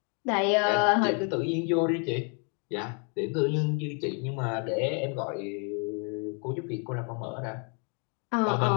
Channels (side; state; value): right; quieter; 39.5 dB